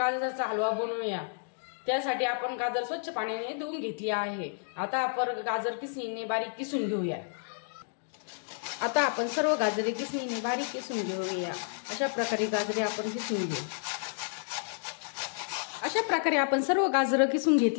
हलवा बनवूया। त्यासाठी आपण गाजर स्वच्छ पाण्याने धुवून घेतली आहे। आता आपण गाजर किसणीने बारीक किसून घेऊया। आता आपण सर्व गाजरे किसणीने बारीक किसून घेऊया। अशा प्रकारे गाजरे आपण किसून घेऊ। अशा प्रकारे आपण सर्व गाजर किसून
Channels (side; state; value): right; silent; digital silence